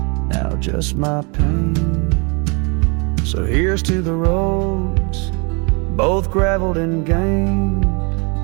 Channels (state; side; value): quieter; left; 32.5 dB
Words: Now just my pain. So here's to the roads, both graveled and gained,